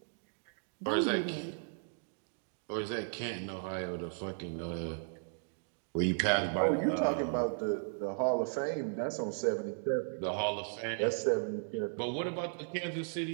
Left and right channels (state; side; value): silent; left; digital silence